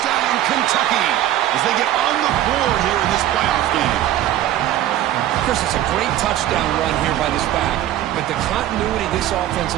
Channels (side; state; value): left; quieter; 12.8 dB